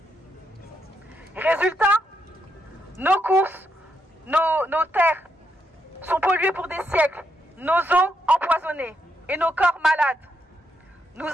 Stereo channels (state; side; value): normal; both; correlation 0.79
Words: Résultat, nos courses, nos terres sont polluées pour des siècles, nos eaux empoisonnées et nos corps malades. Nous